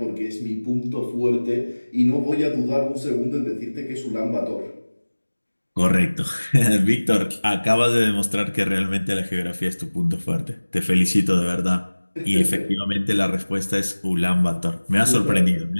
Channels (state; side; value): inverted; both; correlation -1.00